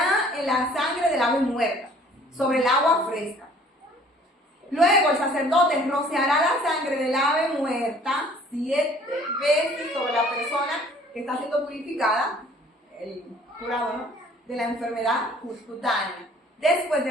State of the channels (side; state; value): both; normal; correlation 0.54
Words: en la sangre del ave muerta, sobre el agua fresca. Luego el sacerdote rociará la sangre del ave muerta 7 veces sobre la persona que está siendo purificada, el curado, ¿no?, de la enfermedad cutánea. Después de